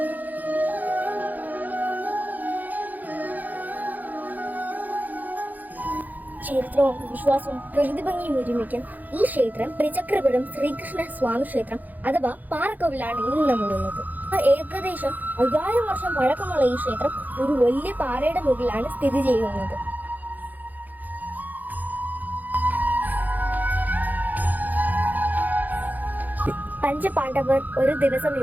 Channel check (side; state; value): left; late; 0.083 ms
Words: ചരിത്രവും വിശ്വാസവും പ്രകൃതിഭംഗിയും ഒരുമിക്കാൻ ഈ ക്ഷേത്രം ത്രിചക്രപുരം ശ്രീകൃഷ്ണ സ്വാമി ക്ഷേത്രം അഥവാ പാറക്കോവിലാണ് ഇന്ന് നമ്മളുള്ളത്. ഏകദേശം 5000 വർഷം പഴക്കമുള്ള ഈ ക്ഷേത്രം ഒരു വലിയ പാറയുടെ മുകളിലാണ് സ്ഥിതി ചെയ്യുന്നത്. പഞ്ചപാണ്ഡവർ ഒരു ദിവസം